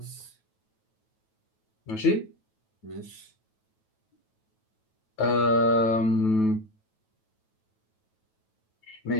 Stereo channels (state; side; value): late; right; 9.2 ms